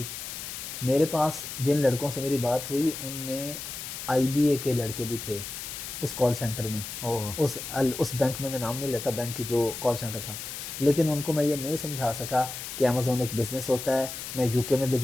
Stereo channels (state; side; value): noise; left; hiss, 8 dB below the sound